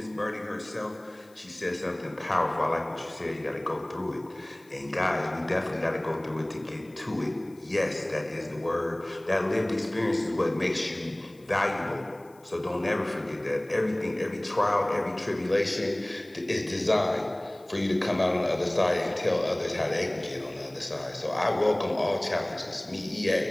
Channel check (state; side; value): noise; left; hiss, 30 dB below the sound